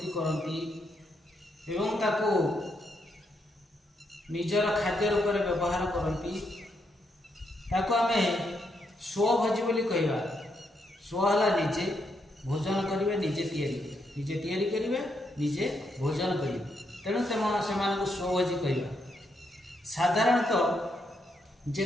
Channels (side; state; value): both; normal; correlation 0.79